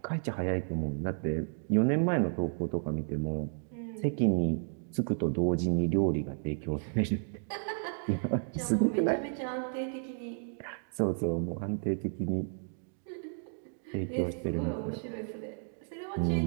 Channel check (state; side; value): silent; left; 56 dB below the other